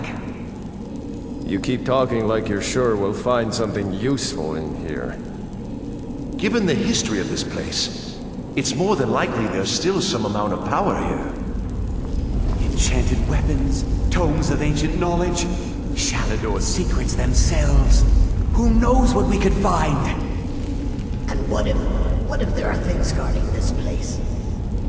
You keep talking like you're sure we'll find something useful in here. Given the history of this place, it's more than likely there's still some amount of power here. Enchanted weapons, tomes of ancient knowledge, Shalador's secrets themselves. Who knows what we could find? And what if there are things guarding this place?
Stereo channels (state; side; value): identical; both; correlation 1.00